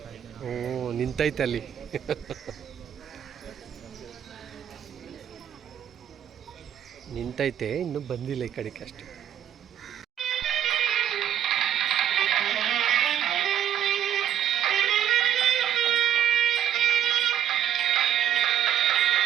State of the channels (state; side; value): quieter; left; 10.2 dB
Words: ನಿಂತೈತೆ ಅಲ್ಲಿ. ನಿಂತೈತೆ, ಇನ್ನೂ ಬಂದಿಲ್ಲ ಈ ಕಡೆಗೆ ಅಷ್ಟೆ.